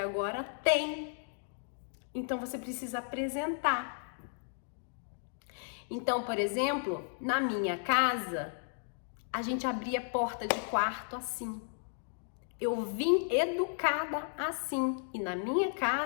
tem. Então você precisa apresentar. Então, por exemplo, na minha casa, a gente abria a porta de quarto assim. Eu vim educada assim. E na minha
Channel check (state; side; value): silent; right; digital silence